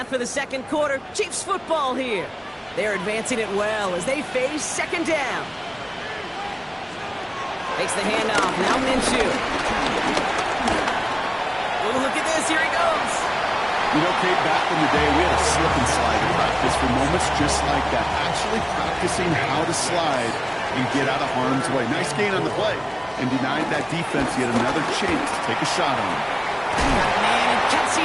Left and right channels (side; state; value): both; identical; correlation 1.00